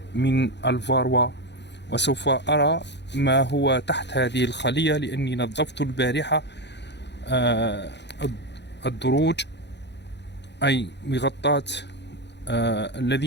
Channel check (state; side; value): late; right; 0.50 ms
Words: من الفاروا. وسوف أرى ما هو تحت هذه الخلية، لأني نظفت البارحة الدروج، أي مغطاة